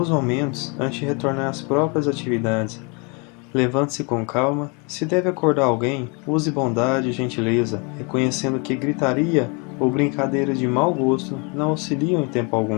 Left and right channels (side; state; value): right; quieter; 32.3 dB